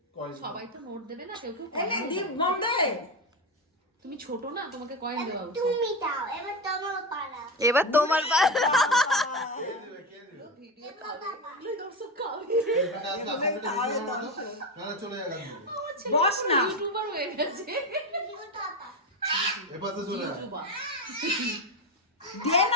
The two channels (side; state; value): both; normal; correlation 0.16